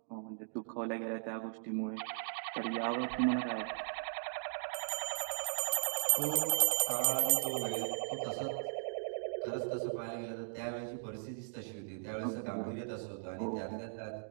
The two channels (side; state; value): left; silent; digital silence